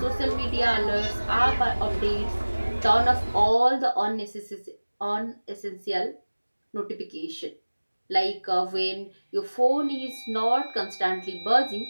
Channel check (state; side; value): inverted; both; correlation -1.00